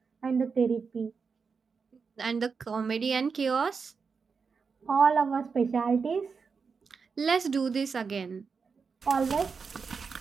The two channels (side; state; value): left; quieter; 5.3 dB